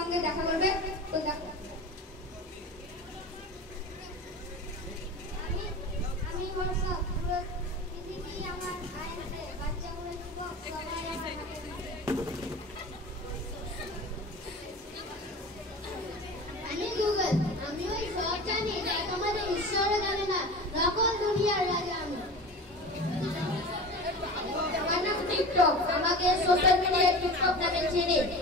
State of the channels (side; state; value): both; normal; correlation 0.34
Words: দেখা করবে। তো দেখো আমি হোয়াটসঅ্যাপ, পুরো পৃথিবী আমার আয়নাতে, বাচ্চাগুলো যুবক সবাই আমার হাতে। আমি গুগল, আমি ওই সব জানি যা তোমাদের ঈশ্বরও জানে না, নকল দুনিয়ার রাজা আমি। আমার নাম টিকটক, আমাকে সোশ্যাল মিডিয়ায় টিকটক নামে চিনি।